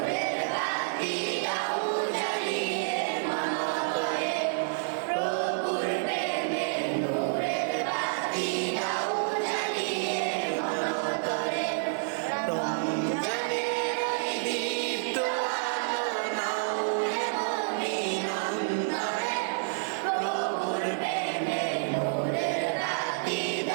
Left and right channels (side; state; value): left; silent; 59 dB below the other